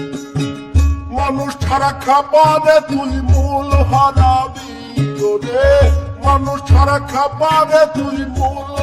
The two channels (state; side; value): identical; both; correlation 1.00